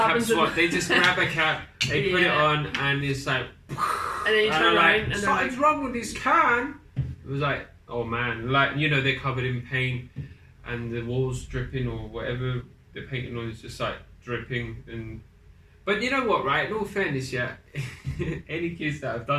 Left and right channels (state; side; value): identical; both; correlation 1.00